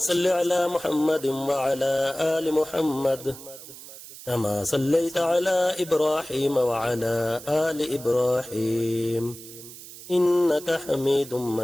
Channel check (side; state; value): right; noise; hiss, 15 dB below the sound